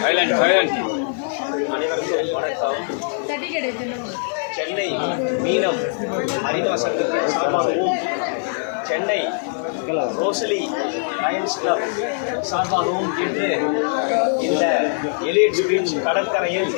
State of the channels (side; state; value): right; silent; digital silence